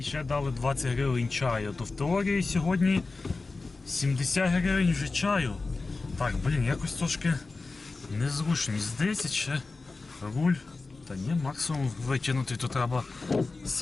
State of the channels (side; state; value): right; quieter; 3.7 dB